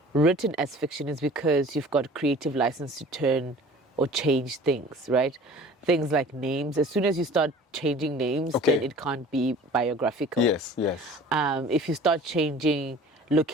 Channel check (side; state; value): both; normal; correlation 0.45